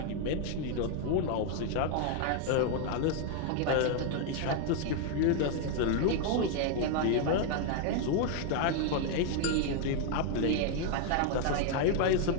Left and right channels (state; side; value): different; both; correlation 0.00